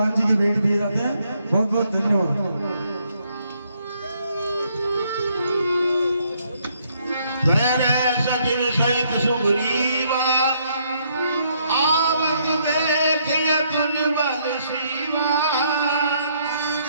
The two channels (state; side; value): inverted; both; correlation -0.71